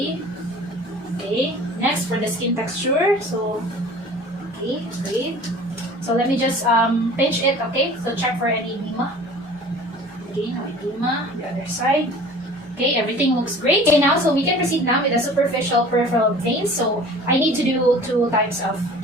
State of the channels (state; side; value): normal; both; correlation 0.45